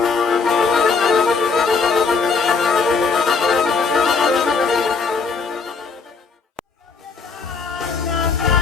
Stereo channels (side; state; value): right; quieter; 4.8 dB